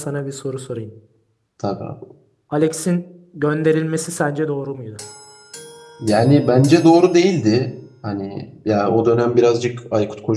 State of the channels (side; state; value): both; identical; correlation 1.00